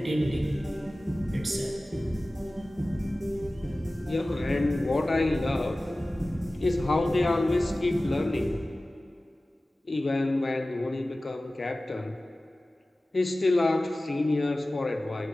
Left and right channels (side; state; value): both; normal; correlation 0.97